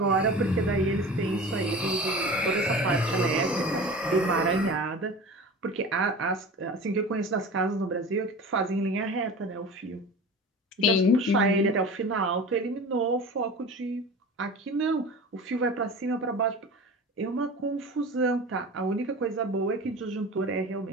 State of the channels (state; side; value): normal; both; correlation 0.35